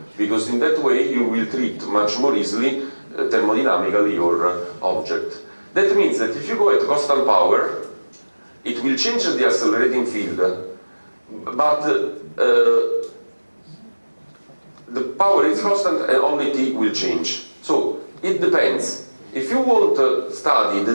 because in that way you will treat much more easily thermodynamically your object. That means that if you go at constant power, it will change the accelerating field, but the power is constant and only T will change. So it depends. If you want to study the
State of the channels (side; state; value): both; inverted; correlation -1.00